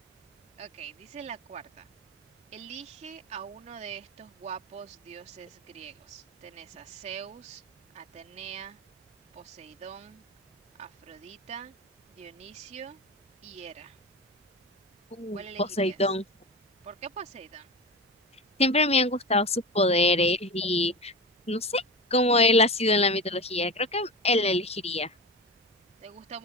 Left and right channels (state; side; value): normal; both; correlation 0.25